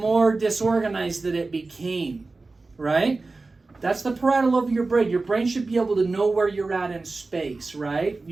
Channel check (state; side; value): quieter; left; 3.6 dB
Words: disorganized that it became, right? That's the parietal lobe of your brain. Your brain should be able to know where you're at in space, right?